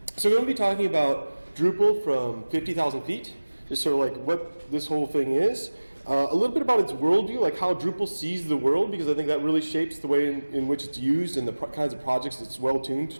we're going to be talking about Drupal from 50,000 feet, just sort of like what this whole thing is. A little bit about its worldview, like how Drupal sees the world, because I think that really shapes the way in which it's used and the kinds of projects it's well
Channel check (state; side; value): inverted; both; correlation -1.00